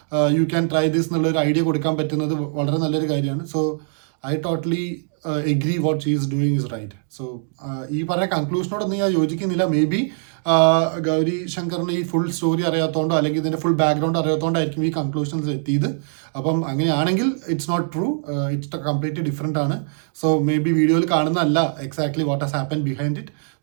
യു ക്യാൻ ട്രൈ ദിസ് എന്നുള്ളൊരു ഐഡിയ കൊടുക്കാൻ പറ്റുന്നത് വളരെ നല്ലൊരു കാര്യമാണ്. So I totally agree what she is doing is right. So ഈ പറഞ്ഞ കൺക്ലൂഷനോടൊന്നും ഞാൻ യോജിക്കുന്നില്ല. മേ ബി ഗൗരി ശങ്കറിന് ഈ ഫുൾ സ്റ്റോറി അറിയാത്തതുകൊണ്ടോ അല്ലെങ്കിൽ ഇതിൻ്റെ ഫുൾ ബാക്ക്ഗ്രൗണ്ട് അറിയാത്തതുകൊണ്ടായിരിക്കും ഈ കൺക്ലൂഷൻസ് എത്തിയത്. അപ്പം അങ്ങനെയാണെങ്കിൽ it's not true, it's completely different ആണ്. സോ മേ ബി വീഡിയോയിൽ കാണുന്നതല്ല exactly what has happen behind it.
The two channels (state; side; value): silent; left; digital silence